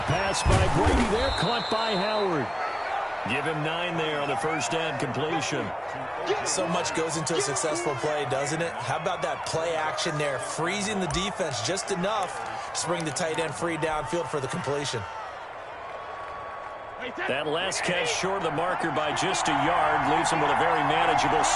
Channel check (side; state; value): both; identical; correlation 1.00